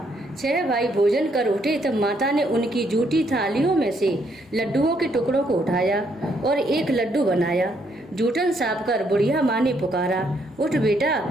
6 भाई भोजन कर उठे तब माता ने उनकी जूठी थालियों में से लड्डुओं के टुकड़ों को उठाया और एक लड्डू बनाया। जूठन साफ कर बुढ़िया माँ ने पुकारा, उठ बेटा,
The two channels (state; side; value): normal; both; correlation 0.72